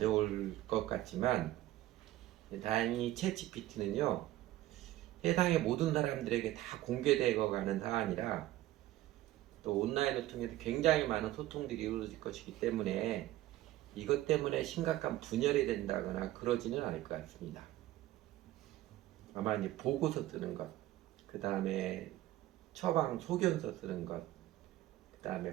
것 같지만 다행히 챗 GPT는요 세상의 모든 사람들에게 다 공개되어 가는 사안이라 또 온라인을 통해서 굉장히 많은 소통들이 이루어질 것이기 때문에 이것 때문에 심각한 분열이 된다거나 그러지는 않을 것 같습니다. 아마 이제 보고서 쓰는 것, 그 다음에 처방 소견서 쓰는 것, 그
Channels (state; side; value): quieter; left; 15.2 dB